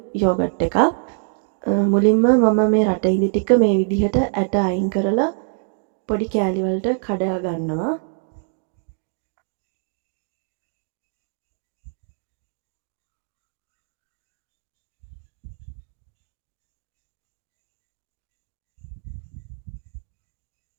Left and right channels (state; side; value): silent; left; 61 dB below the other